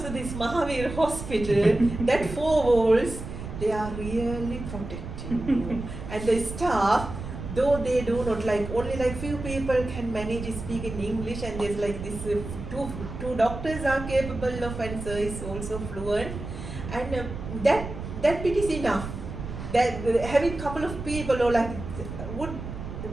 to this Mahavir hospital, that four walls, they are really protecting you. And the staff, though they do not like, only like few people can manage to speak in English, and there's like this two doctors are capable of, and sir is also fluent, and that bit is enough. That having couple of people or like would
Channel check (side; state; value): right; noise; rumble, 8 dB below the sound